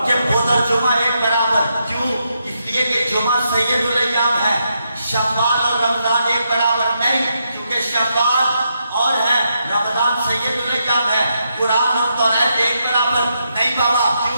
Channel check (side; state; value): both; inverted; correlation -0.81